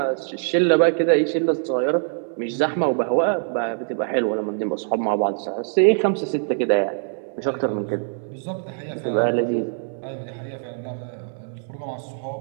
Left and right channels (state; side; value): silent; left; 63 dB below the other